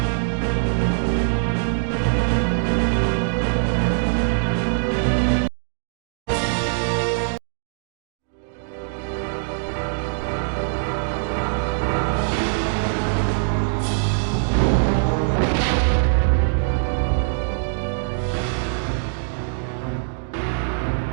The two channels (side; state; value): left; silent; digital silence